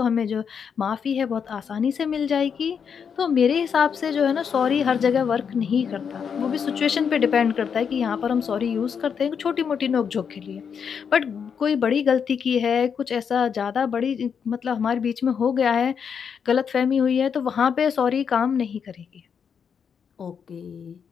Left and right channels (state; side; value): quieter; right; 6.9 dB